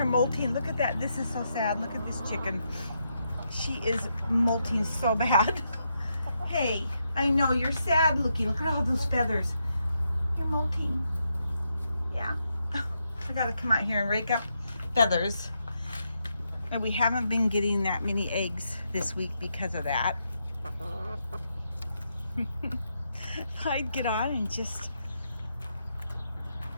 molting. Look at that. This is so sad. Look at this chicken. She is molting so bad. Hey, I know you're sad looking. Look at all those feathers. You're molting. Yeah. I gotta come out here and rake up feathers. And we haven't been getting that many eggs this week because of that. I'd get on and just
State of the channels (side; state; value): both; inverted; correlation -0.82